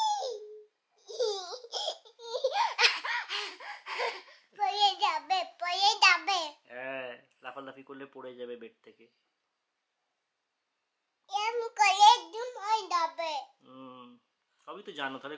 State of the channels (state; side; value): identical; both; correlation 1.00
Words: হ্যাঁ, লাফালাফি করলে পড়ে যাবে বেড থেকে। সবই তো জানো, তাহলে